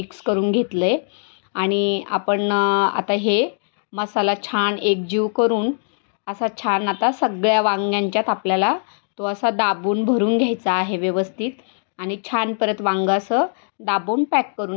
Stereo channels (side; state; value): right; silent; 65 dB below the other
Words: करून घेतलं आहे आणि आपण आता हे मसाला छान एकजीव करून असा छान आता सगळ्या वांग्यांच्यात आपल्याला तो असा दाबून भरून घ्यायचा आहे व्यवस्थित. आणि छान परत वांगं असं दाबून पॅक